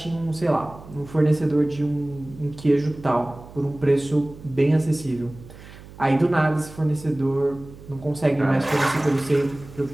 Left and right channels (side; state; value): right; noise; hum, 18 dB below the sound